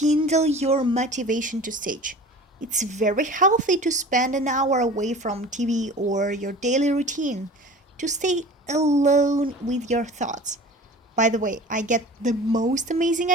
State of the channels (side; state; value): both; normal; correlation 0.40